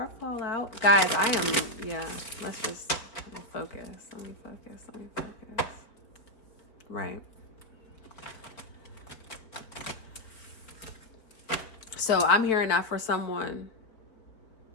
fall out? Guys, I am, yeah, let's just focus. Let me focus. Right. So I'm hearing that for someone.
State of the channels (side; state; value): right; late; 4.4 ms